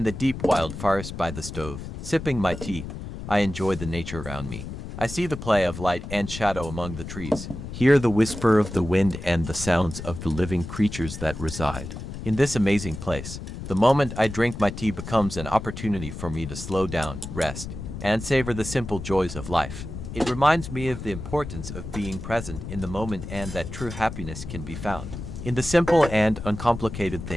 the deep wild forest by the stove, sipping my tea, I enjoy the nature around me. I see the play of light and shadow among the trees, hear the whisper of the wind and the sounds of the living creatures that reside in this amazing place. The moment I drink my tea becomes an opportunity for me to slow down, rest, and savor the simple joys of life. It reminds me of the importance of being present in the moment and that true happiness can be found in the simple and uncomplicated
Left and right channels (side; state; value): left; noise; rumble, 9 dB below the sound